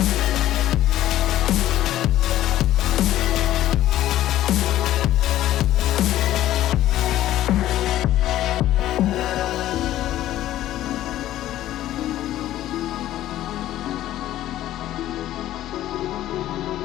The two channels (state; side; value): quieter; right; 13.6 dB